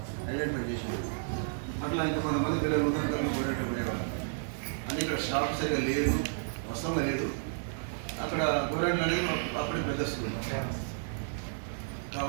ఐడెంటిఫై చేసేది. అట్లా ఇంకా కొంతమంది పిల్లలు ఉదయం పోయేట పోయేవాళ్ళు. అని ఇక్కడ స్టాఫ్ సరిగా లేదు, వస్తంగా లేదు. అక్కడ గోరెంట్లు అనేది అప్పుడే పెద్ద స్కూల్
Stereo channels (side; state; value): left; silent; digital silence